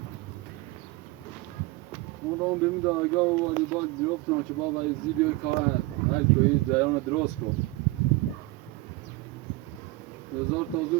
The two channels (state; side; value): quieter; left; 20.5 dB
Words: ما دارم بیم درگاه و والی باگ بیفتم که بابا از ویدیو کار هر کوی زیان درست کن هزار تازه